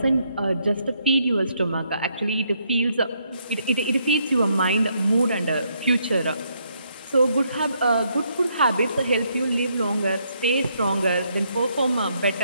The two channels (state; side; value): inverted; both; correlation -0.74